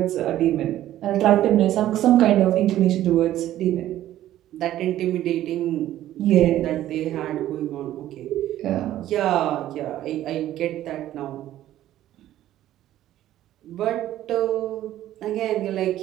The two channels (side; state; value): left; quieter; 13.2 dB